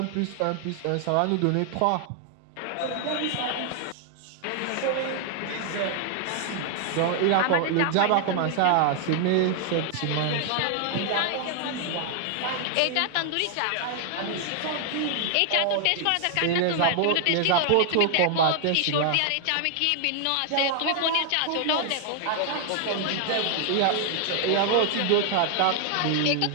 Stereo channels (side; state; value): both; different; correlation 0.00